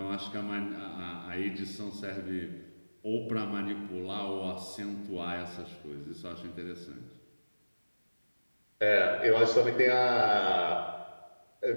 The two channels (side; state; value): both; inverted; correlation -1.00